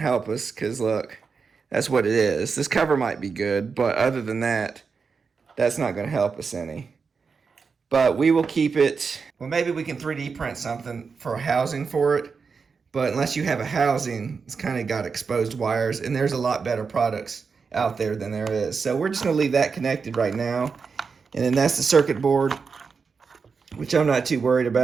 us because look, that's what it is. This cover might be good, but other than that, that's not going to help us any. But we will keep it. Well, maybe we can 3D print something for a housing for it. But unless you have a housing, it's kind of got exposed wires, and there's a lot better products out there than there is. So we're just going to leave that connected right now. And then that's the circuit board, which I'm not too worried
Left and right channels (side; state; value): left; quieter; 5.3 dB